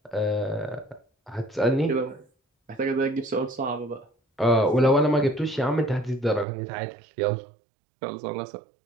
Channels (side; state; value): left; drops out; at 6.5 s